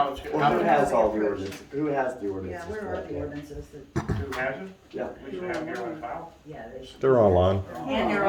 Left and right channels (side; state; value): both; identical; correlation 1.00